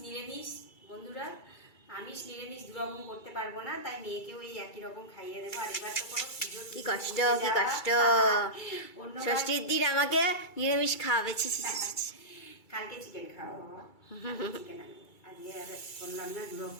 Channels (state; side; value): late; right; 2.3 ms